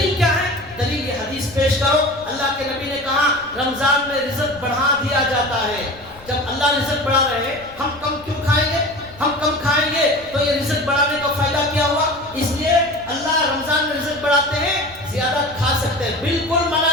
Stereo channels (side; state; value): left; noise; rumble, 22 dB below the sound